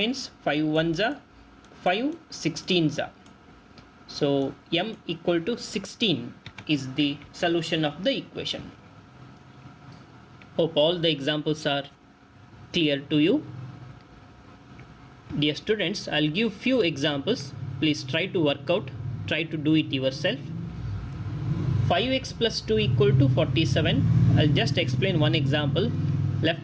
5 ones are 5 16s are. So m equal to 16 is the solution of the equation. Hope all the examples are clear to you. Dear students, I'll give few examples. Please try to work out, try to do it yourself. 5x plus 2 equal to 47. I'll just explain one example.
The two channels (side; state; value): both; identical; correlation 1.00